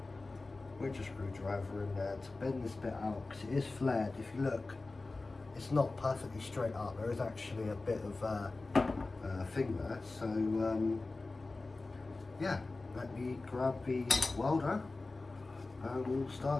with a screwdriver in there to bend this bit out, because it is flared. If you look, it's not perfectly straight up, there is actually a bit of thing there, so yeah, let me grab the welder and we'll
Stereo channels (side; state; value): right; quieter; 3.4 dB